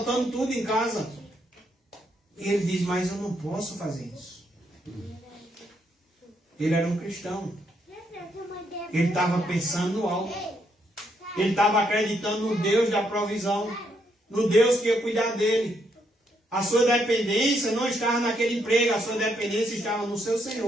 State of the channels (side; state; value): both; normal; correlation 0.75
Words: tudo em casa. E ele diz, mas eu não posso fazer isso. Ele era um cristão. Ele estava pensando no alto. Ele estava acreditando no Deus da provisão, no Deus que ia cuidar dele. A sua dependência não estava naquele emprego, a sua dependência estava no seu